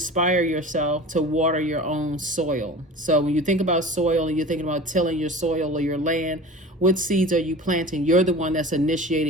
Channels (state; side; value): normal; both; correlation 0.37